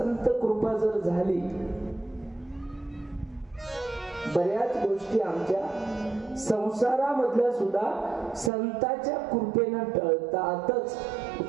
कृपा जर झाली, बऱ्याच गोष्टी आमच्या संसारामधल्या सुद्धा संतांच्या कृपेनं टळतातच.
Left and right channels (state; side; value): drops out; left; at 8.5 s